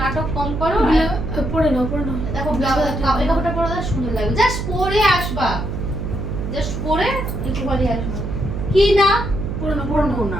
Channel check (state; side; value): noise; right; hum, 4 dB below the sound